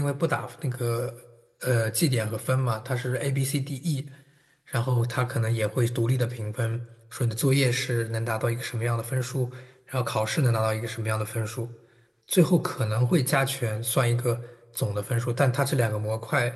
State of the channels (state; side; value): identical; both; correlation 1.00